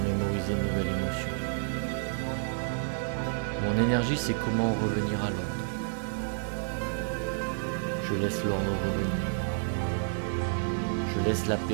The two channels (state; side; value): silent; left; digital silence